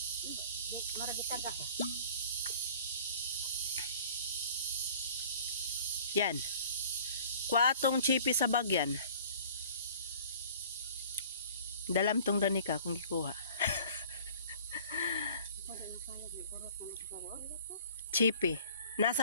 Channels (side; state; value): both; inverted; correlation -0.49